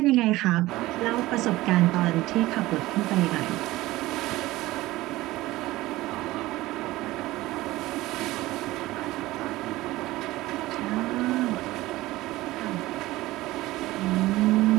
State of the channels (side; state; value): left; quieter; 18.0 dB